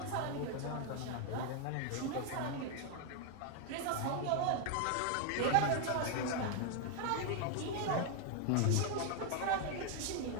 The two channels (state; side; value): different; both; correlation 0.00